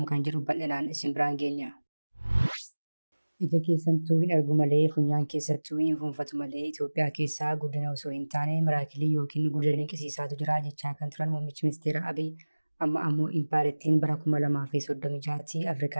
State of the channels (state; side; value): inverted; both; correlation -1.00